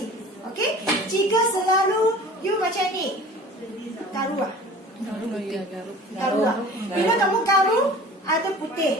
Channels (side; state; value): both; normal; correlation 0.43